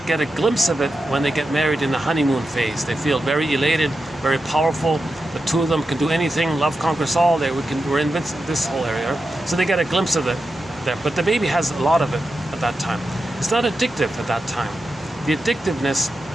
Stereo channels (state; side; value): normal; both; correlation 0.89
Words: get a glimpse of it when they get married in the honeymoon phase. They feel very elated, very powerful. The two of them can do anything. Love conquers all. We're in this whole area. So they get a glimpse of it there. But the baby has a lot of it at that time. It's not addictive at that time. The addictiveness